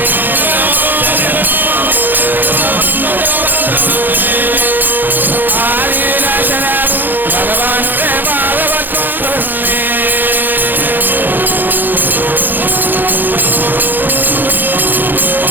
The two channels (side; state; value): left; late; 0.089 ms